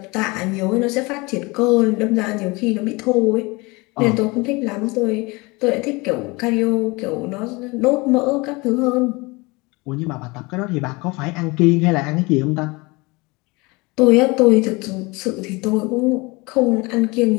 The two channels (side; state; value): right; quieter; 25.1 dB